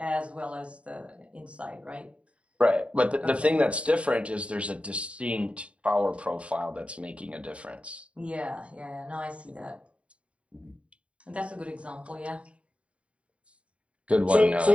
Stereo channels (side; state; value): left; late; 0.062 ms